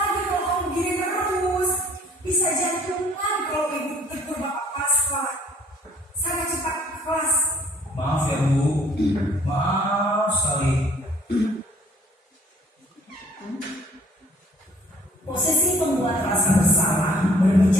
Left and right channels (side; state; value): both; normal; correlation 0.56